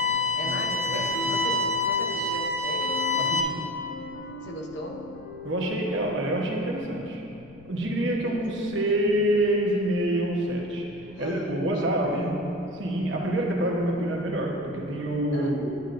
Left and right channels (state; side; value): noise; left; rumble, 23 dB below the sound